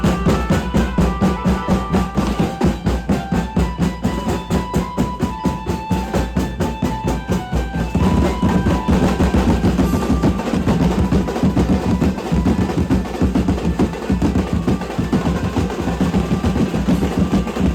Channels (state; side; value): identical; both; correlation 1.00